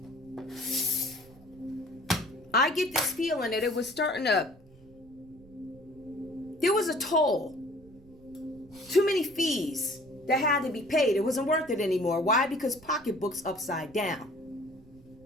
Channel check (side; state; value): right; noise; rumble, 24 dB below the sound